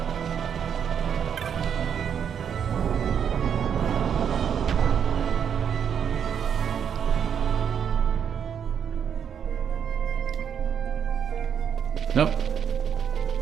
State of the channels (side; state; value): left; quieter; 7.9 dB